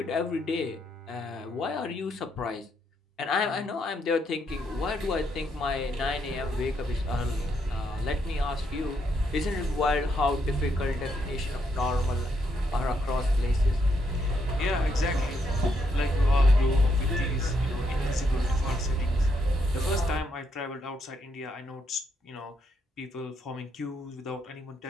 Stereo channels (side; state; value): both; normal; correlation 0.77